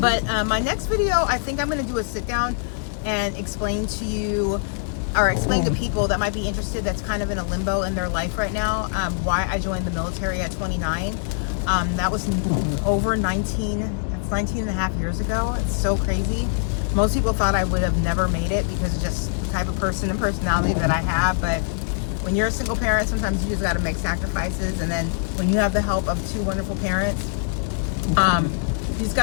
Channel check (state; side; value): silent; right; digital silence